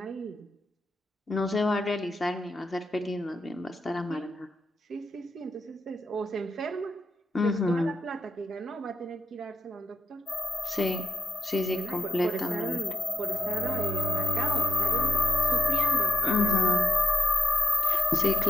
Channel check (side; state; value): both; normal; correlation 0.83